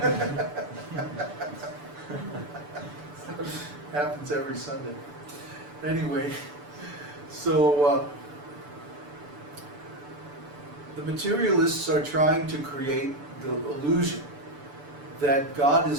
Happens every Sunday. Anyway, so the materialists are trying to create the illusion that God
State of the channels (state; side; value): late; left; 6.9 ms